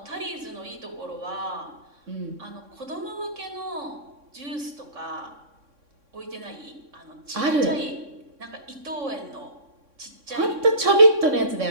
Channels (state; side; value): late; left; 3.6 ms